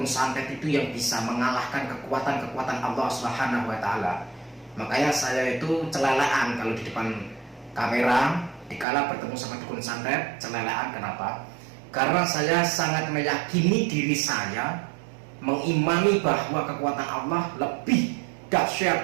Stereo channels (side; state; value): left; drops out; at 8.8 s